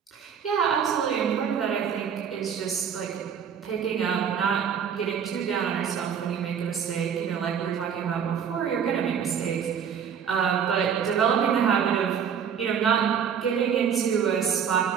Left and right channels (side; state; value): left; quieter; 7.6 dB